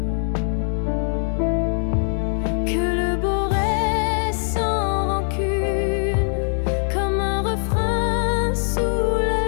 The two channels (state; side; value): silent; right; 61 dB below the other